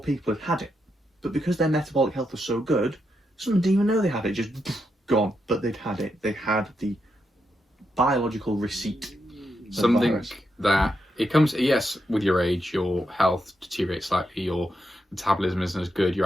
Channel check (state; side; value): normal; both; correlation 0.83